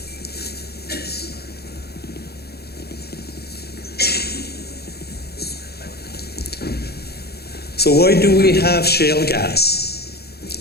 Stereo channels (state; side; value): late; right; 0.46 ms